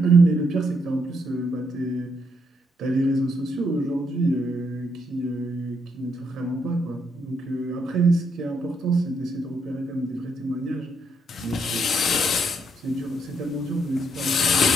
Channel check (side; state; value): both; normal; correlation 0.75